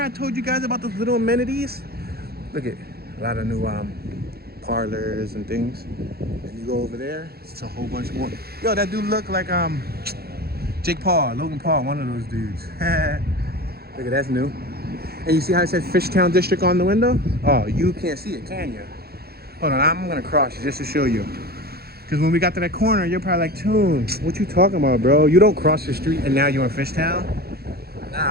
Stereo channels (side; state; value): left; late; 0.46 ms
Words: I told you guys about those little amenities? Look at a lot of new parlors and things. And you go over there, it's a whole bunch more. Yo, that dude look like Logan Paul, one of those dudes. Look at that's new. And you see how it says Fishtown District on the window? Oh, you can't see it, can you? Hold on, I'm gonna cross it just to show you. Because when we got to that corner, you're probably like, Toon, what you talking about, bro? You don't cross the street and now you're in Fishtown?